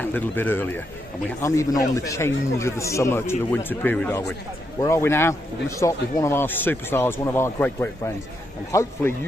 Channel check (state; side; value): normal; both; correlation 0.81